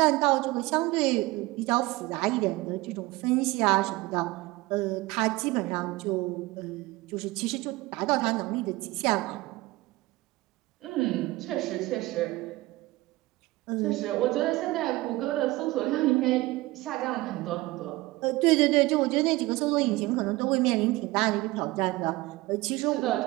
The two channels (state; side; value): quieter; left; 20.1 dB